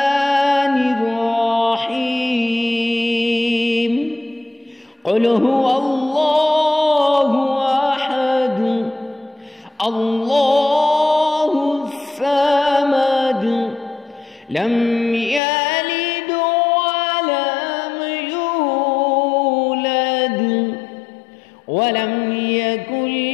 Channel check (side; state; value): right; drops out; at 15.4 s